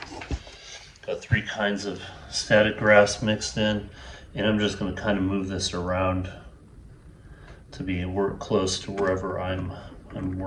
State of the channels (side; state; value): both; identical; correlation 1.00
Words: Got 3 kinds of static grass mixed in, and I'm just going to kind of move this around to be close to wherever I'm